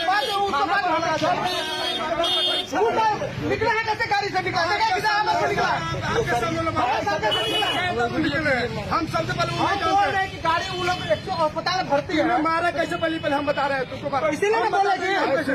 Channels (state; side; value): identical; both; correlation 1.00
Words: निकले हैं कैसे? गाड़ी से निकला हम सबसे पहले बोल रहे हैं कि गाड़ी वो लोग अस्पताल भर्ती है। मारा कैसे पहले हम बता रहे हैं तुमको। इसीलिए मैं बोल